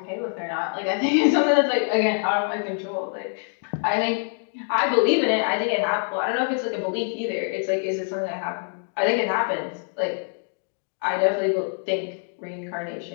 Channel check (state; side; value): silent; right; digital silence